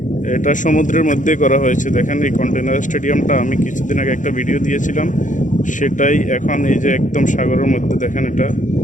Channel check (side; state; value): right; late; 0.37 ms